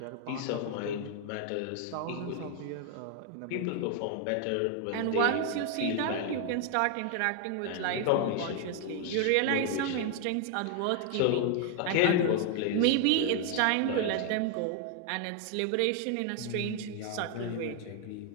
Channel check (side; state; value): both; different; correlation 0.00